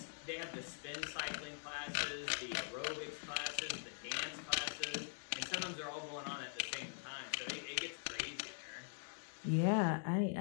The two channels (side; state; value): right; silent; digital silence